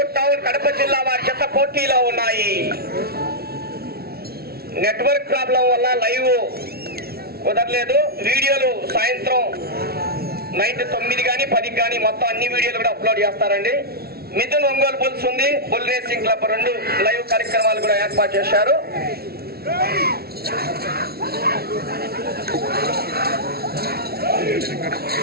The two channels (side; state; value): left; late; 0.45 ms